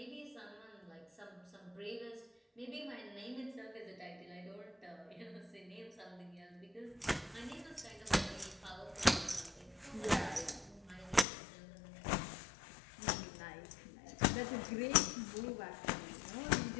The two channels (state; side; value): drops out; right; at 11.2 s